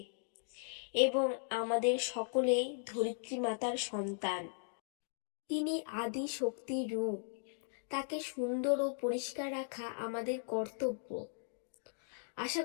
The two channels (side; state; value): right; silent; digital silence